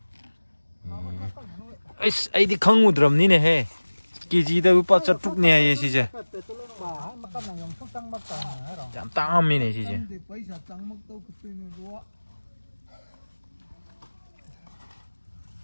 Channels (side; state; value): both; inverted; correlation -1.00